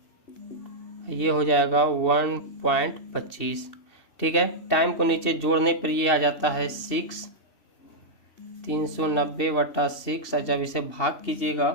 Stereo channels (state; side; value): late; right; 2.7 ms